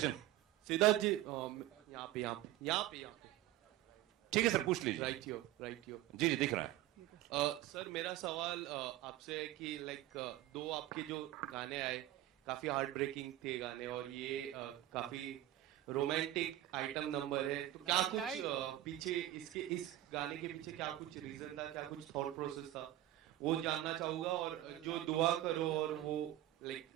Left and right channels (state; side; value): quieter; left; 14.4 dB